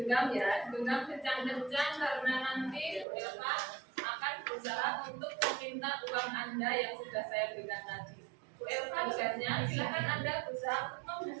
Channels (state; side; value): drops out; left; at 3.1 s